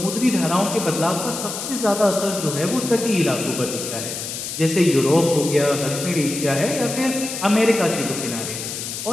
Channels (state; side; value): noise; left; hiss, 6 dB below the sound